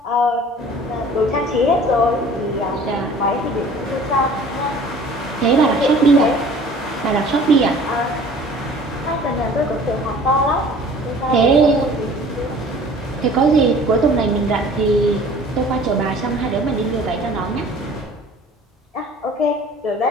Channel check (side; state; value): both; normal; correlation 0.48